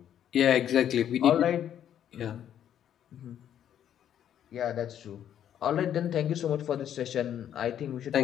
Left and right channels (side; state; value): right; quieter; 10.1 dB